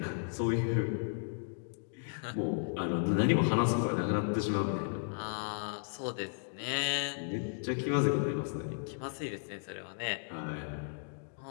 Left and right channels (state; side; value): silent; right; digital silence